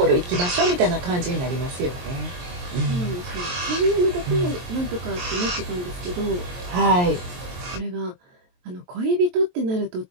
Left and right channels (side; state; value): left; late; 23 ms